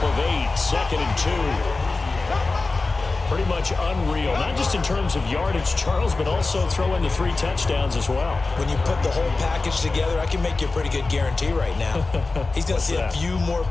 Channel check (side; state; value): right; quieter; 3.6 dB